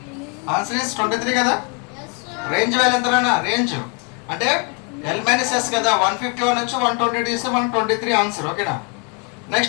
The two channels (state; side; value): quieter; right; 34.6 dB